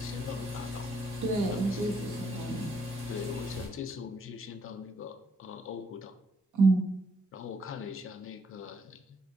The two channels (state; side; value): normal; both; correlation 0.73